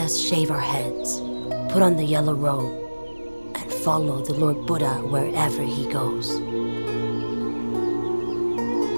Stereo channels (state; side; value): inverted; both; correlation -1.00